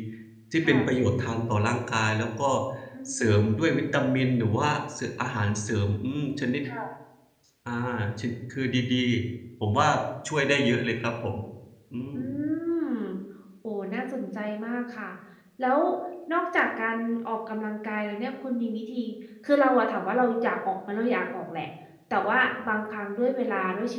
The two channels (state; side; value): identical; both; correlation 1.00